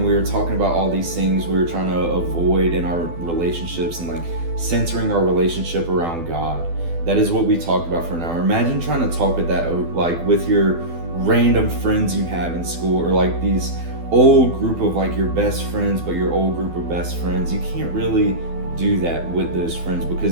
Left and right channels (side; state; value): left; late; 12 ms